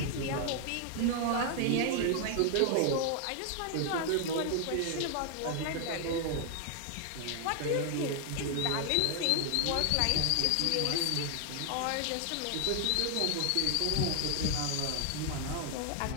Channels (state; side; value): different; both; correlation 0.00